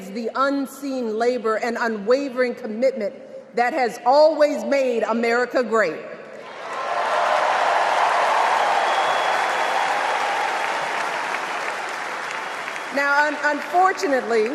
the unseen labor and unwavering commitment that has always made America great. Now, unfortunately,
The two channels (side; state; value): both; identical; correlation 1.00